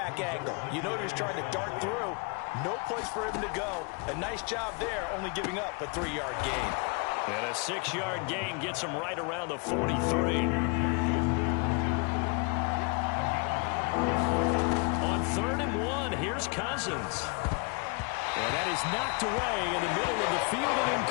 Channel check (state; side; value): quieter; right; 32.4 dB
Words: angle. You know he was trying to dart through. No place for him to go. A nice job there, only giving up a 3-yard gain. And a 6-yard gain gets him right around the 43. On 3rd and 1, here's Cousins. And that is knocked away in the middle of the field and